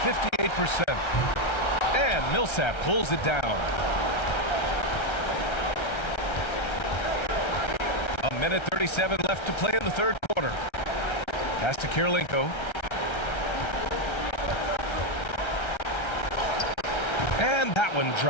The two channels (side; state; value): right; late; 1.3 ms